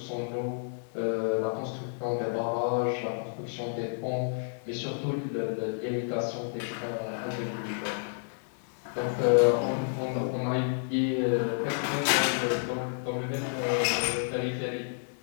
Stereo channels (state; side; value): silent; right; digital silence